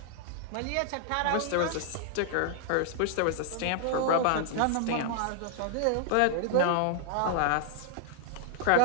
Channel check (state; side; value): different; both; correlation 0.00